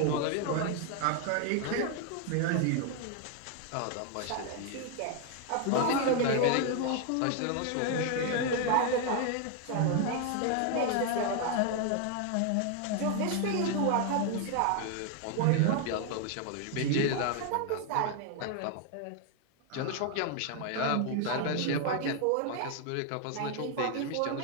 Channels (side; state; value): both; different; correlation 0.00